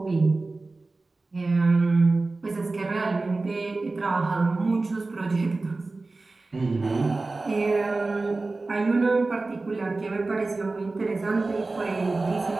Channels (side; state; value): left; quieter; 3.4 dB